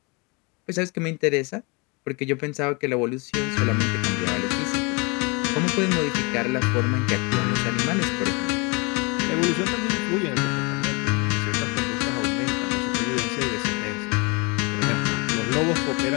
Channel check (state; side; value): quieter; right; 29.4 dB